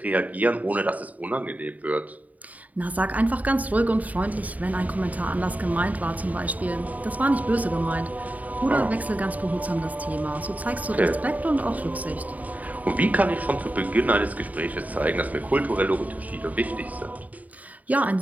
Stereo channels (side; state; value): left; late; 0.074 ms